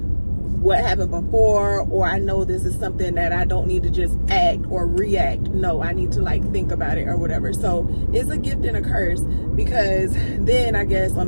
what happened before, or I know this is something that I don't need to just act or react. No, I need to like think about it or whatever. So it's a gift and a curse, because then I guess on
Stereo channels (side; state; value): both; inverted; correlation -1.00